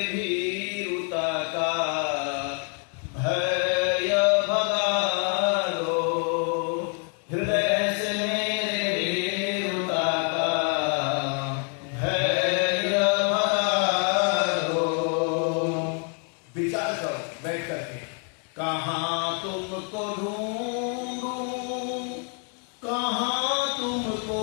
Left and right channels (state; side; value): quieter; right; 39.6 dB